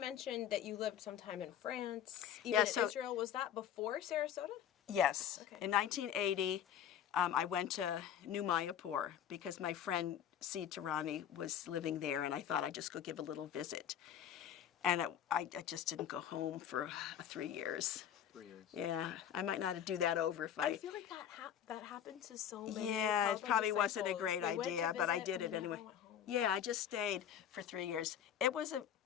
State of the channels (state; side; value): quieter; right; 9.5 dB